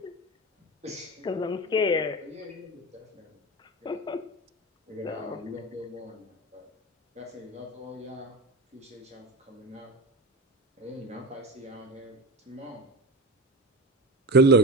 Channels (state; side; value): normal; both; correlation 0.24